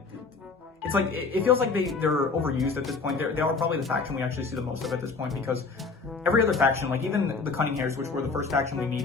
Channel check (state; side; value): quieter; right; 4.4 dB